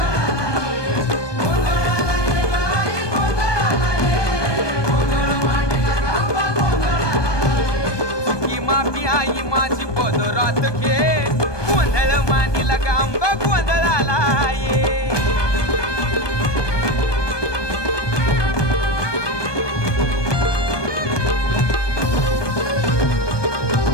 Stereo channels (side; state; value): right; late; 1.2 ms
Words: आई माझी पदरात घे, गोंधळ मांडीला गांबा गोंधळाला ये.